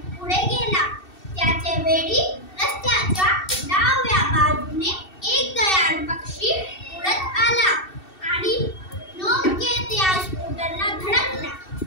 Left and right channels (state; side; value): late; right; 2.7 ms